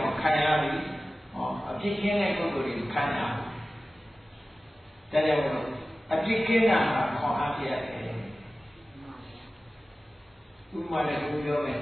ော့ခံရပြီအပြစ်ကင်းတဲ့ပုဂ္ဂိုလ်တွေခံရဒါကြောင့်အပြစ်ကင်းတာကခေါ်အားပြရတယ်ဥပမာနဲ့ပြောမယ်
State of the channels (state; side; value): normal; both; correlation 0.96